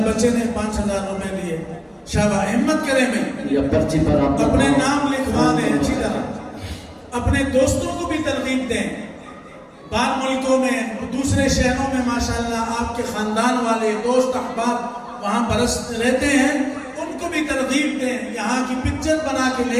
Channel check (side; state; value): both; identical; correlation 1.00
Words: بچے نے 5,000 روپے دیے. شاباش, ہمت کریں بھائی, یا پرچی پر آپ اپنے نام لکھوا دیں اچھی طرح. اپنے دوستوں کو بھی ترغیب دیں. بعض ملکوں میں, دوسرے شہروں میں ماشاءاللہ آپ کے خاندان والے دوست احباب وہاں برس رہتے ہیں, ان کو بھی ترغیب دیں. یہاں کی پکچر بنا کے